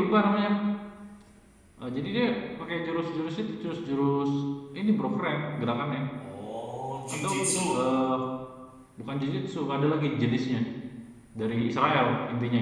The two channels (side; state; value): both; identical; correlation 1.00